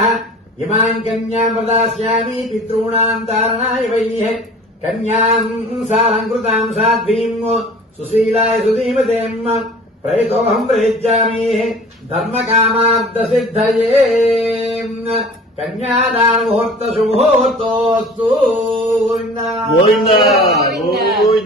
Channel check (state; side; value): normal; both; correlation 0.44